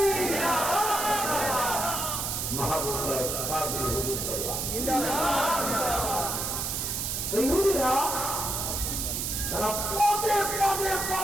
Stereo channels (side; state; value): right; noise; hiss, 1 dB below the sound